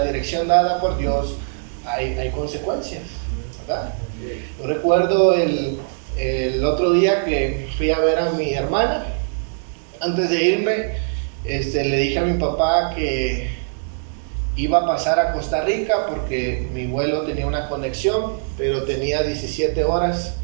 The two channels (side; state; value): left; silent; digital silence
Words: dirección dada por Dios, hay consecuencias, ¿verdad? Yo recuerdo el otro día que fui a ver a mi hermana. Antes de irme, le dije a mi papá que iba a pasar a Costa Rica porque mi vuelo tenía una conexión, pero tenía 17 horas